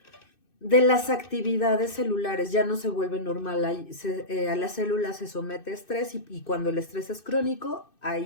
las actividades celulares, ya no se vuelve normal, a la célula se somete a estrés y cuando el estrés es crónico,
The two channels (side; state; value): right; late; 2.6 ms